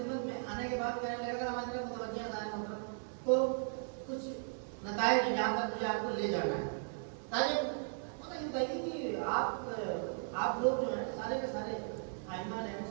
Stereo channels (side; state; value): left; silent; digital silence